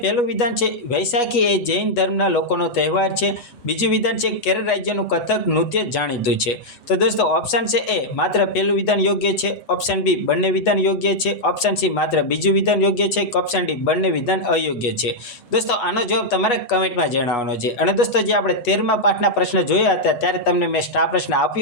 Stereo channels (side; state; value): right; late; 8.2 ms